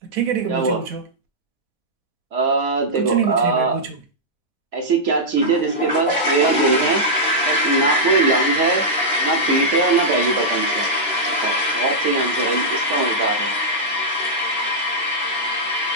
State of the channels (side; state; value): both; normal; correlation -0.09